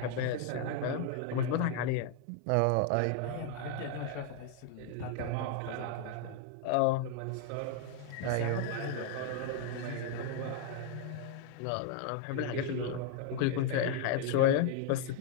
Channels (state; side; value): different; both; correlation 0.00